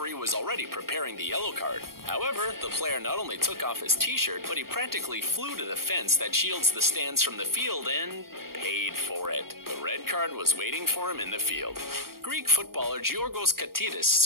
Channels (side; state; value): left; late; 0.93 ms